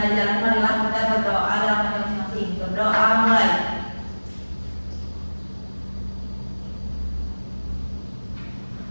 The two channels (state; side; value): inverted; both; correlation -1.00